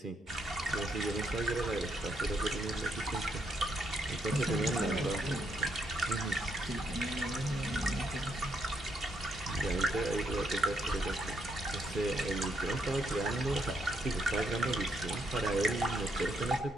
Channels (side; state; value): both; normal; correlation 0.76